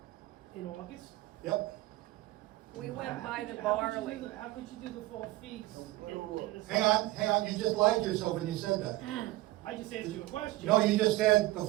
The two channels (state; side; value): quieter; left; 17.9 dB